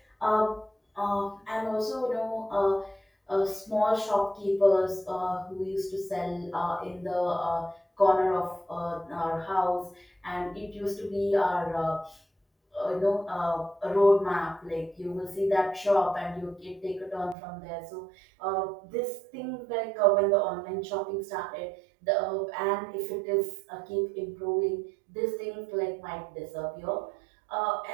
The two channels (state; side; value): drops out; left; at 17.4 s